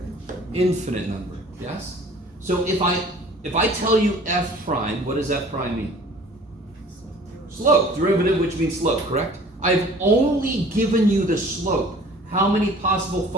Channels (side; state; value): both; normal; correlation 0.49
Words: Infinite number, yes? So if I tell you f prime, what does f prime mean? Slope, derivative, which means slope, correct? I've only given you the slope. How many possible